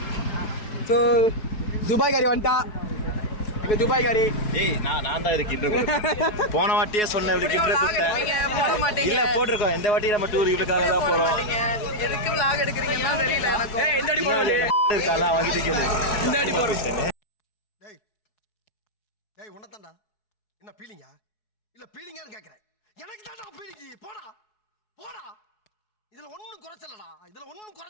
ஸோ துபாய் காரி வந்துட்டான். துபாய் காரி. ஏய், நான் தான் இதுக்கு போன வாட்டியே சொன்னேன். போட மாட்டீங்க. இல்ல, போட்டிருக்கோம். இந்த வாட்டி நம்ம டூர் இவளுக்காக தான் போறோம். எதுக்கு vlog எடுக்கிறீங்கன்னா தெரியல எனக்கு. இந்த அடி போடுவே இருக்கால வாங்கிட்டு கேளு. இந்த அடி போடுறேன். டேய் உன்னதான்டா. என்ன பீலிங்கா? இல்ல பீலிங்கான்னு கேக்குறேன். எனக்கு தான்டா பீலிங்கி. போடா இதுல ஒண்ணும்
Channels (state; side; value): late; right; 4.7 ms